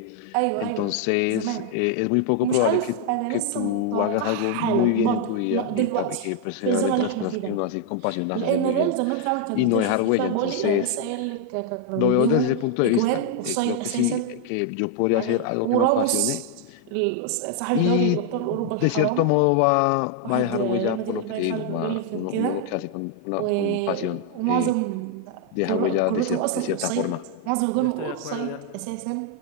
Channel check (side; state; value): both; different; correlation 0.00